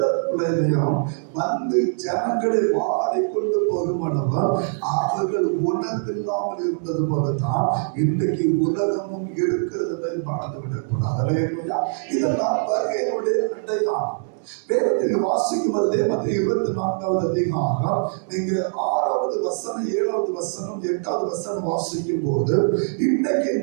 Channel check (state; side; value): silent; left; digital silence